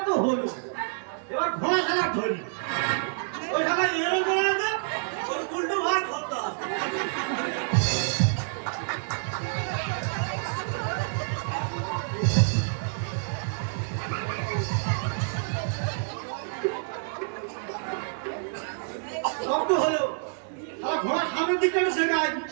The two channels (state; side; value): silent; left; digital silence